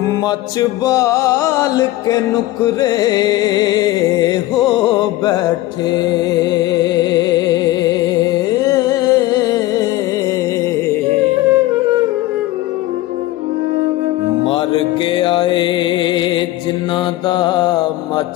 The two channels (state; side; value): quieter; right; 16.7 dB